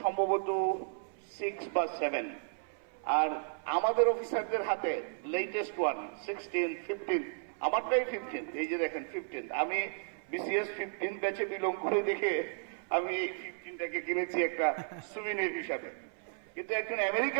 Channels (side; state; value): left; silent; 55 dB below the other